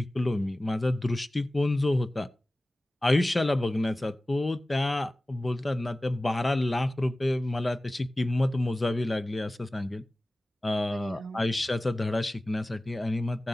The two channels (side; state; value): both; normal; correlation 0.97